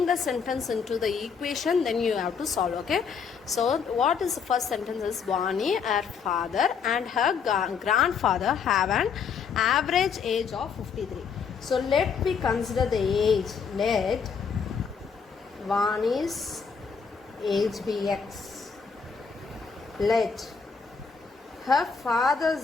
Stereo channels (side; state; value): right; quieter; 6.1 dB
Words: the sentence into the equation, then you have to solve. Okay. So what is the first sentence is Vani, her father and her grandfather have an average age of 53. So let me consider the age. Let Vani's age be x. Let her